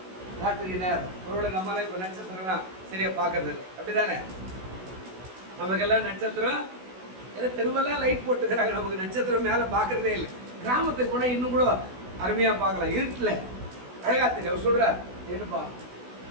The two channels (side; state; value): left; late; 16 ms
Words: ராத்திரி நேரம் ஒருவேளை நம்மளாம் இப்போ நட்சத்திரம்லாம் சரியா பார்க்கறது இல்லை, அப்படிதானே? நமக்கெல்லாம் நட்சத்திரம் ஏதோ தெருவெல்லாம் லைட் போட்டுக்கிறாங்க, நமக்கு நட்சத்திரம் மேலே பார்க்கறதே இல்லை. கிராமத்துக்கு போனால் இன்னும் கூட அருமையாக பார்க்கலாம், இருட்டில் அழகா தெரியும். அவர் சொல்றார், என்னப்பா